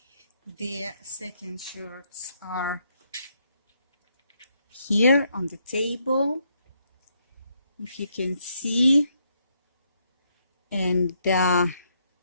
the second shorts are here on the table, if you can see. And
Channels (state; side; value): inverted; both; correlation -0.75